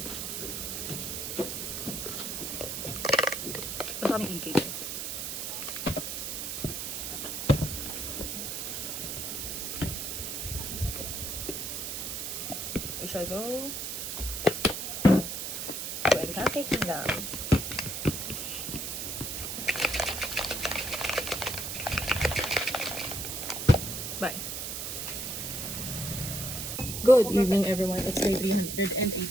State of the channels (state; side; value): noise; right; hiss, 4 dB below the sound